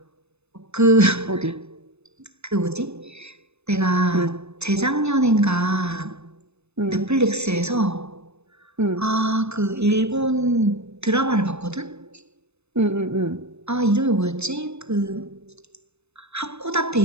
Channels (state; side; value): late; left; 0.80 ms